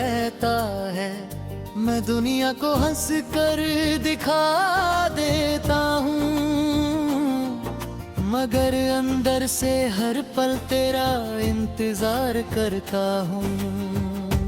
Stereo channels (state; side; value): identical; both; correlation 1.00